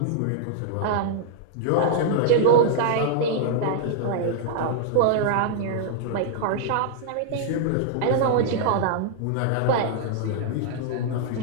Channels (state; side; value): different; both; correlation -0.01